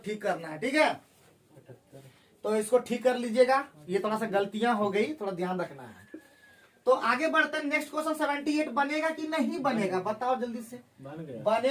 ठीक करना है, ठीक है। तो इसको ठीक कर लीजिएगा, ये थोड़ा सा गलतियां हो गई, थोड़ा ध्यान रखना है। तो आगे बढ़ते हैं, नेक्स्ट क्वेश्चन 78 बनेगा कि नहीं बनेगा? बताओ जल्दी से। बन गया।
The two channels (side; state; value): both; identical; correlation 1.00